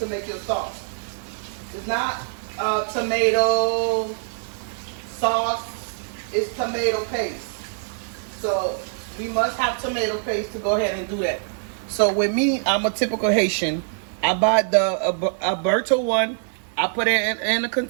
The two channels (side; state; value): left; silent; digital silence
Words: make your sauce. It's not tomato sauce, it's tomato paste. So we must have tomato paste to go ahead and do that. So with me, I'm a typical Haitian. I buy the Alberto one, I put it in a